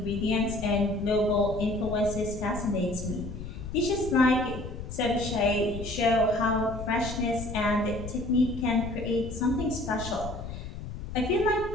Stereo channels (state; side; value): noise; left; rumble, 9 dB below the sound